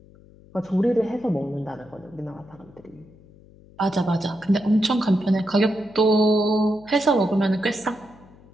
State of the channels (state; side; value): noise; left; hum, 25 dB below the sound